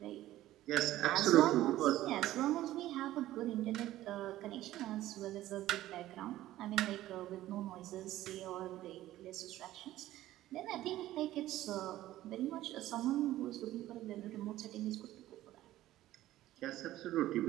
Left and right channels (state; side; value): quieter; left; 14.7 dB